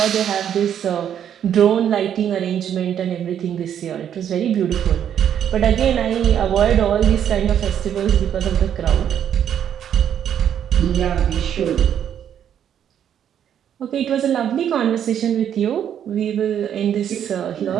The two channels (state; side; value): quieter; left; 9.4 dB